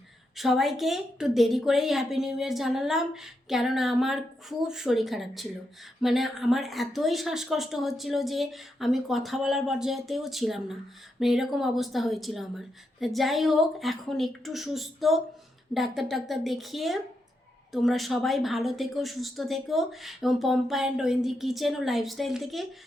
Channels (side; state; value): both; normal; correlation 0.83